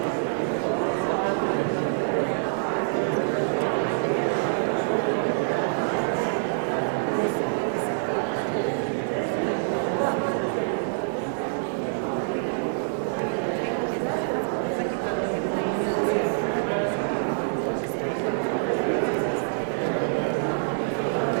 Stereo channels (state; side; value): silent; left; 59 dB below the other